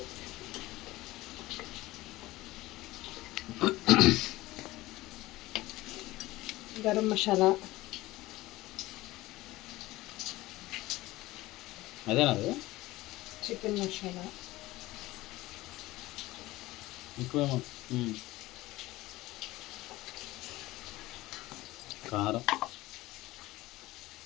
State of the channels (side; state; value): right; quieter; 18.3 dB